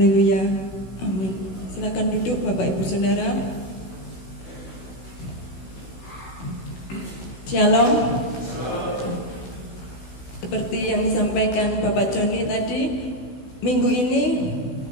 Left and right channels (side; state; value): right; late; 16 ms